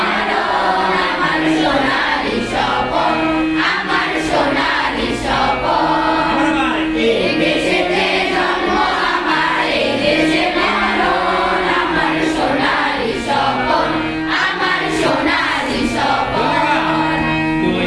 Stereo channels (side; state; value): both; identical; correlation 1.00